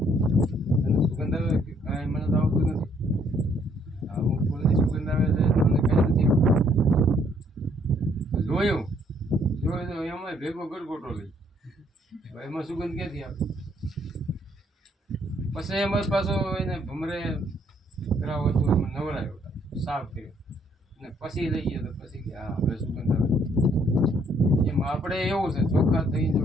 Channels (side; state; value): both; normal; correlation 0.66